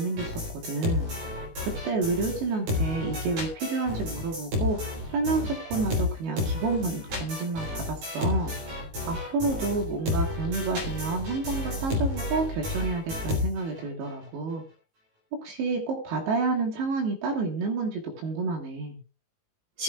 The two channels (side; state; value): left; late; 19 ms